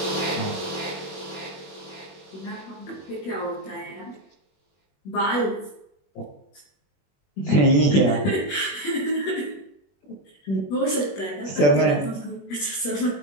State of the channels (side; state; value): right; late; 21 ms